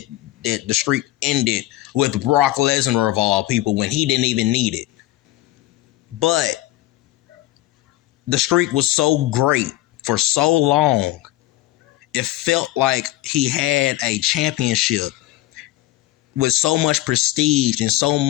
the streak ended with Brock Lesnar of all people when he didn't even need it. But the streak was so great for so long. It felt like he had a championship with so much prestige and so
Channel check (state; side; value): quieter; right; 15.8 dB